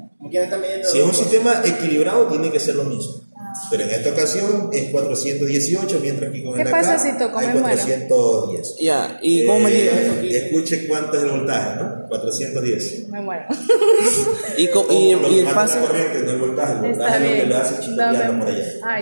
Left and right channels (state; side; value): inverted; both; correlation -1.00